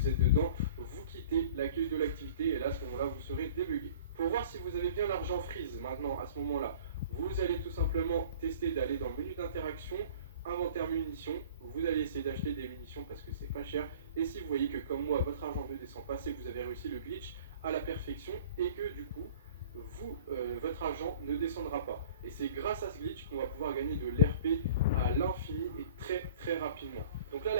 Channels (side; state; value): both; inverted; correlation -0.46